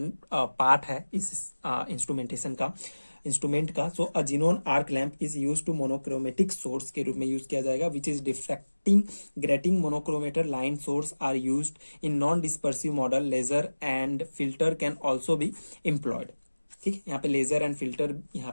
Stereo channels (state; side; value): inverted; both; correlation -1.00